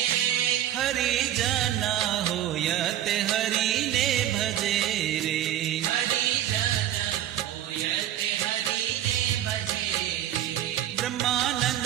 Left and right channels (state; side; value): quieter; left; 11.9 dB